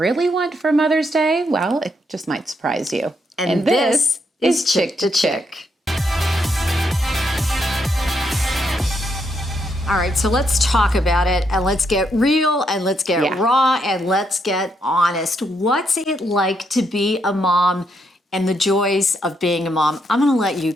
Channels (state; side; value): normal; both; correlation 0.77